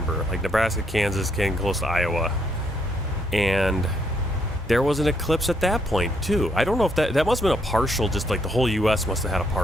Like Nebraska, Kansas, getting close to Iowa. And there was an eclipse at that point, too. I don't know if that must have been a partial, just like the whole U.S. must have had a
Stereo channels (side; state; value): both; normal; correlation 0.72